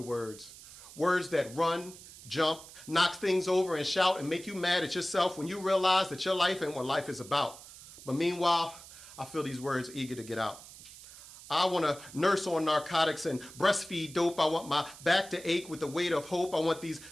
words. Words that run, jump, knock things over, and shout and make you mad at yourself when you realize that your life ain't what life is about. But meanwhile, I feel these words eager to get out. I want to nurse on narcotics and breastfeed dope. I want my back to ache with the weight of hope. I want these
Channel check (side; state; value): right; noise; hiss, 17 dB below the sound